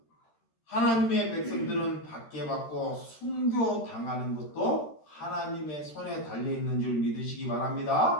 하나님의 백성들은 박해받고 순교당하는 것도 하나님의 손에 달려있는 줄 믿으시기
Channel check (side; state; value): right; late; 13 ms